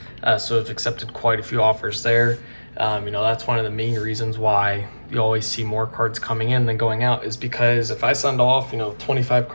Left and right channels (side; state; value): both; inverted; correlation -1.00